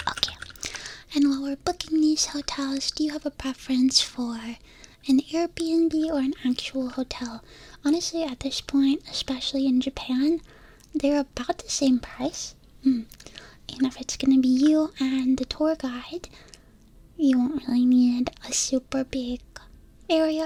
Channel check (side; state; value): both; identical; correlation 1.00